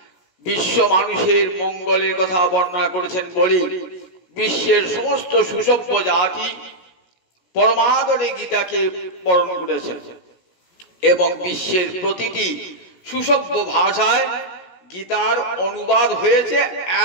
বিশ্ব মানুষের মঙ্গলের কথা বর্ণনা করেছেন বলে বিশ্বের সমস্ত সুসভ্য জাতি পরমাদরে গীতাকে বরণ করেছেন এবং বিশ্বের প্রতিটি সুসভ্য ভাষায় গীতার অনুবাদ হয়েছে,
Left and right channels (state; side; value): late; right; 17 ms